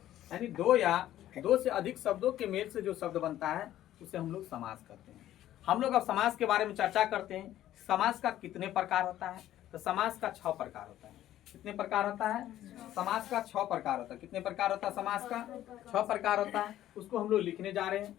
यानी दो या दो से अधिक शब्दों के मेल से जो शब्द बनता है उसे हम लोग समास कहते हैं। हम लोग अब समास के बारे में चर्चा करते हैं। समास का कितने प्रकार होता है? तो समास का 6 प्रकार होता है। कितने प्रकार होता है? समास का 6 प्रकार होता है। कितने प्रकार होता है? समास का 6 प्रकार होता है। उसको हम लोग लिखने जा रहे हैं।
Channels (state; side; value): quieter; right; 12.9 dB